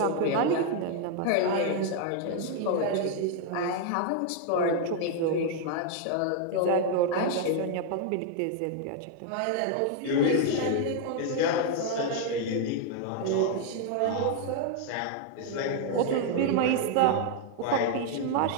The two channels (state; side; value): different; both; correlation 0.00